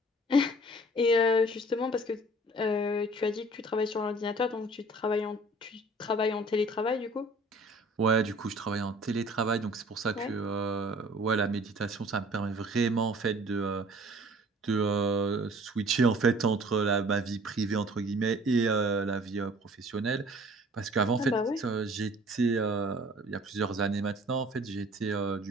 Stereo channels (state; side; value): normal; both; correlation 0.51